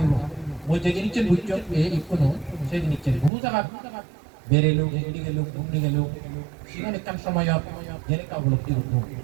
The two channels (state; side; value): drops out; left; at 3.3 s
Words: মই যে জিনিসছেন বুঝছো এই কোনো সেই জিনিসছেন বহু জায়গা বেরেলো এগিয়ে গেল ঘুমনি গেল সেখানে কান সময় জেনে কা উপলব্ধি করবো